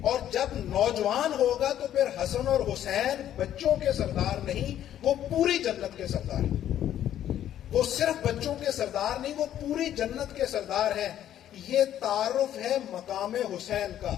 اور جب نوجوان ہوگا تو پھر حسن اور حسین بچوں کے سردار نہیں، وہ پوری جنت کے سردار ہیں. وہ صرف بچوں کے سردار نہیں، وہ پوری جنت کے سردار ہیں. یہ تعارف ہے مقام حسین کا،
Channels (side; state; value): right; quieter; 11.3 dB